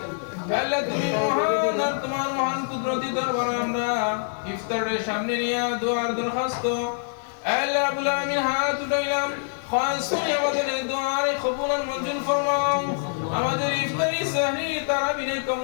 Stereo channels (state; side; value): silent; right; 62 dB below the other